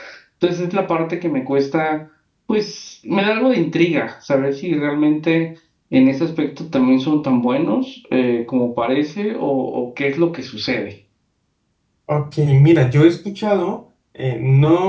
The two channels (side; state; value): both; identical; correlation 1.00